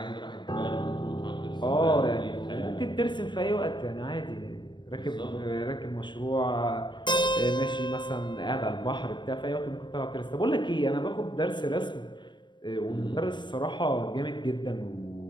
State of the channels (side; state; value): right; late; 0.22 ms